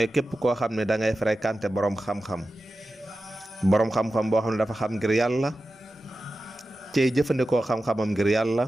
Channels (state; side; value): normal; both; correlation 0.93